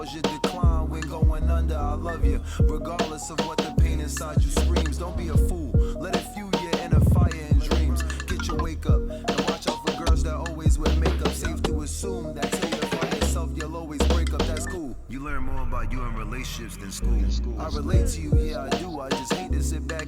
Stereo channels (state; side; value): identical; both; correlation 1.00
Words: you decline. When going under, I love you, regardless of what the pain inside you screams. Don't be a fool, let it fuel your inner fire and dreams. Get your wake up, and watch out for girls that always wear makeup. Safe to assume that till you find yourself, you'll always break up, that's cool. You learn more about you in relationships than school. I relate to you, yeah I do, I just hate to sit